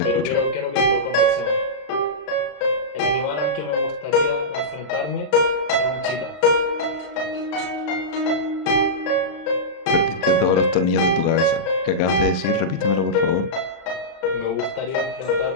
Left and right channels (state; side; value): late; right; 34 ms